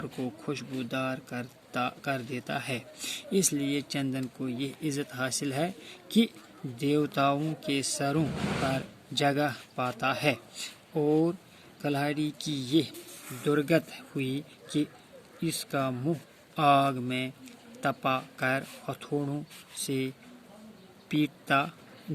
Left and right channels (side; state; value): both; identical; correlation 1.00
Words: کو خوشبودار کر دیتا ہے، اس لیے چندن کو یہ عزت حاصل ہے کہ دیوتاؤں کے سروں پر جگہ پاتا ہے، اور کلہاڑی کی یہ درگت ہوئی کہ اس کا منہ آگ میں تپا کر ہتھوڑوں سے پیٹا